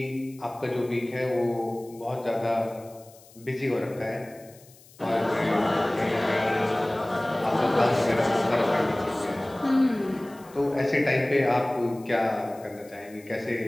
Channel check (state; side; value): noise; left; hiss, 25 dB below the sound